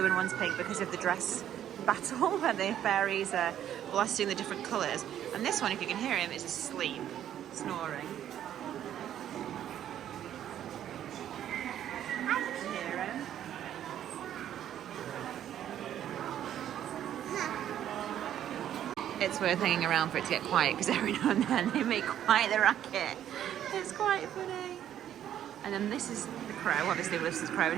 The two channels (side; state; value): left; quieter; 10.8 dB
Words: and one's pink because of the dress battle where the fairies are blasting the different colours. And this one, if you can hear him, is asleep, snoring. It's worth hanging around for it to get quiet because every now and then they make quite the racket. It's quite funny. And then this is the crow, obviously this is the crow,